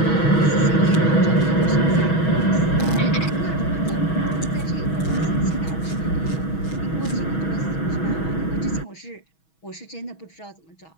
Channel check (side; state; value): right; late; 6.2 ms